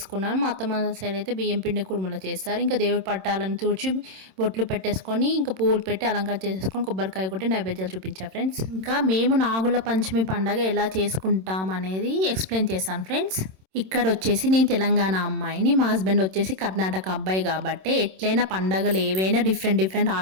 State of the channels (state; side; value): late; left; 26 ms